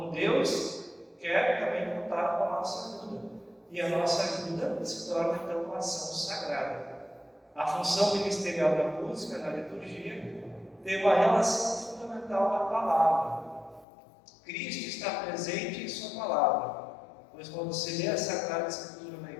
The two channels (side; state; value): right; drops out; at 13.9 s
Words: Deus quer também contar com a nossa ajuda. E a nossa ajuda se torna, então, uma ação sagrada. A função ministerial da música, na liturgia, tem uma relação fundamental com a palavra. Cristo está presente em sua palavra, pois quando se lê a Sagrada Escritura na